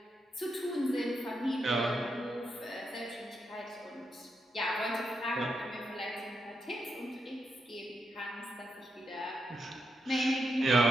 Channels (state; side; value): normal; both; correlation 0.83